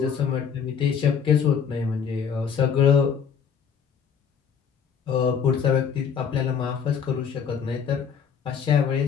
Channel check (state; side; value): quieter; right; 7.0 dB